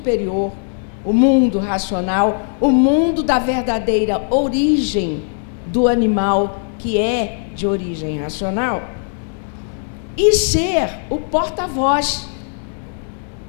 o mundo racional, o mundo da verdadeira origem do animal, que é de origem racional, e ser o porta-voz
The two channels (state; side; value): silent; right; 67 dB below the other